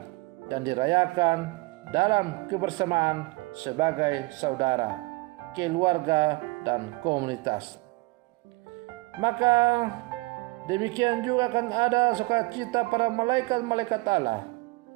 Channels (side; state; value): left; quieter; 25.0 dB